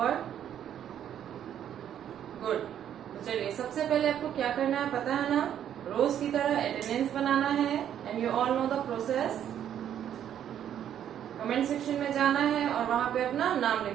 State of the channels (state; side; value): quieter; left; 10.0 dB